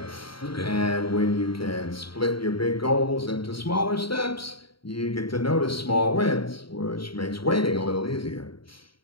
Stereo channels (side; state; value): right; late; 0.74 ms